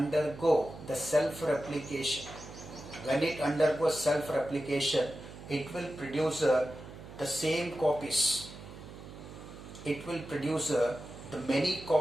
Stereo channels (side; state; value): right; noise; hum, 14 dB below the sound